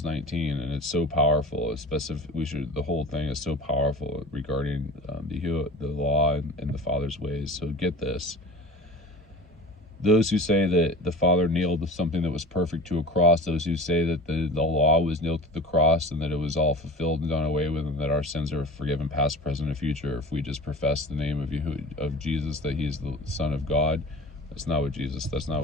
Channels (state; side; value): normal; both; correlation 0.37